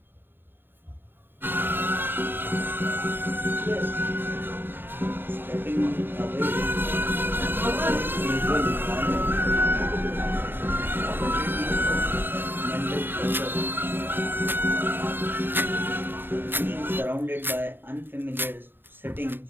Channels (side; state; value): left; late; 0.097 ms